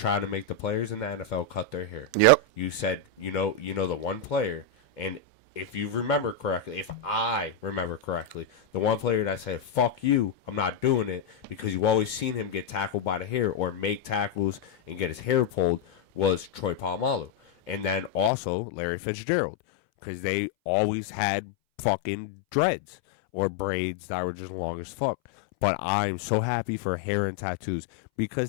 to make the players in the NFL cut their hair. Yep. You said, you know the one player, and if you remember correctly, if I remember correctly, the one player that said, fuck you, I'm not doing it, because you always seen him get tackled by the hair or make tackles and get his hair pulled, was Troy Polamalu. And then also Larry Fitzgerald, because they always had fucking dreads or braids that were just long as fuck. But I'm so happy for hair and tattoos,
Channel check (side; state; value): right; drops out; at 18.3 s